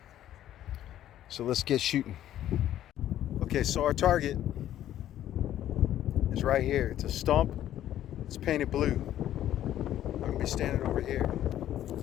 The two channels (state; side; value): quieter; right; 12.1 dB